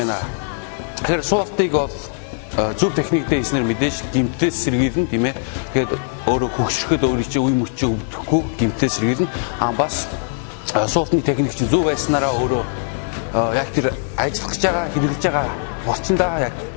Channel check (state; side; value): silent; right; digital silence